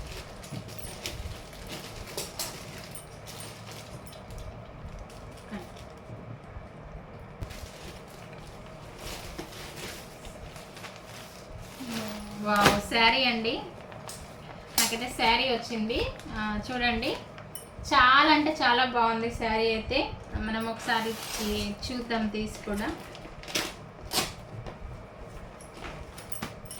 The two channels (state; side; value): identical; both; correlation 1.00